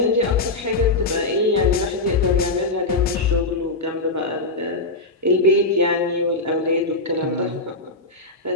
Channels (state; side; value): quieter; right; 3.1 dB